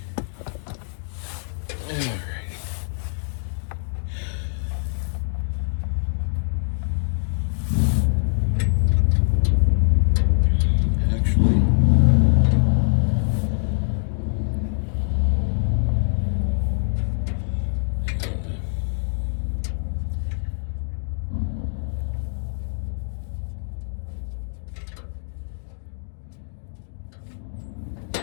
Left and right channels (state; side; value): silent; right; digital silence